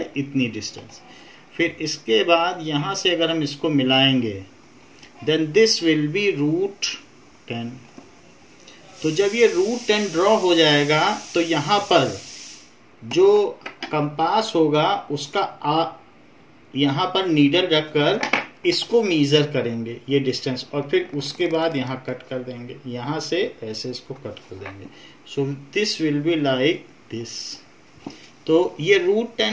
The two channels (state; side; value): identical; both; correlation 1.00